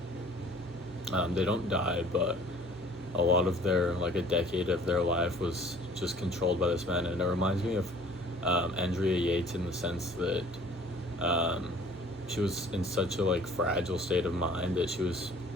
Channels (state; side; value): normal; both; correlation 0.52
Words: they don't die, but a lot of their like a decade of their life was just controlled by this man. And it reminds me of Andrea Yates in the sense that um, she was in such a like fragile state of mind that she was